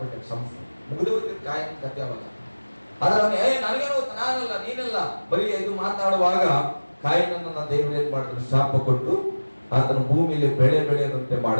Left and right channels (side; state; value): both; inverted; correlation -1.00